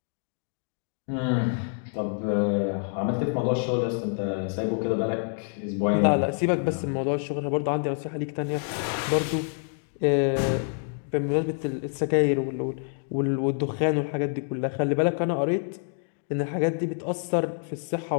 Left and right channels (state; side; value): silent; right; 60 dB below the other